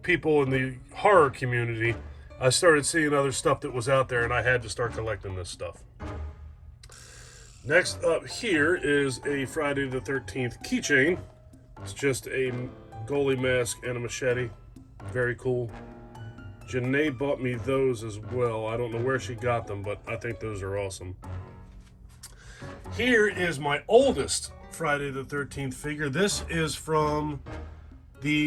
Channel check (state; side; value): identical; both; correlation 1.00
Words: people in the horror community, I started seeing other stuff that was out there, and I had to start collecting this stuff. Next up here is a Friday the 13th keychain. It's just a goalie mask and a machete. Very cool. Janay bought me those as well. I don't know where she got them, but I think those are awesome. Here is my oldest Friday the 13th figure. This is from